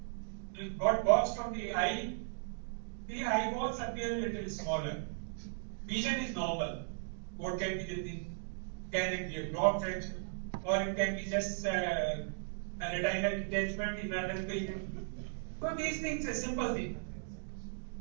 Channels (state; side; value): silent; left; digital silence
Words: got boxed from the eye balls appear a little smaller. Vision is normal. What can be the thing? Can it be a glaucoma fracture? Or it can be just a retinal detachment in another patient. So these things are simple things.